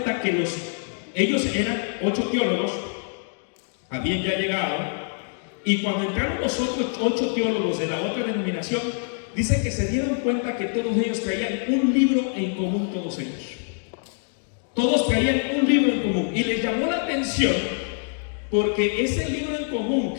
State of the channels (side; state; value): right; silent; 62 dB below the other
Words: que ellos eran 8 teólogos, habían ya llegado, y cuando entraron los otros 8 teólogos de la otra denominación, dice que se dieron cuenta que todos ellos traían un libro en común, todos ellos. Todos traían un libro en común y les llamó la atención porque ese libro en común